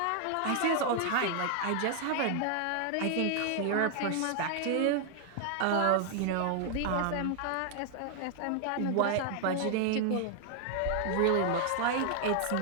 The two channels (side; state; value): both; different; correlation 0.00